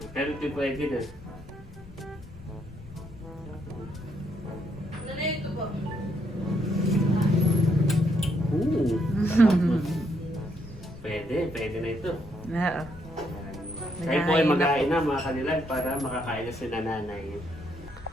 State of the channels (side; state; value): left; noise; rumble, 20 dB below the sound